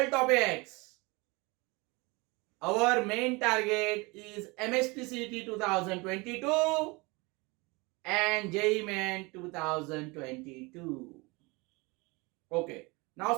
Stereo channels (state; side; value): quieter; left; 25.8 dB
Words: topics. Our main target is MSTCT 2022 and JEE Main 2022. Okay.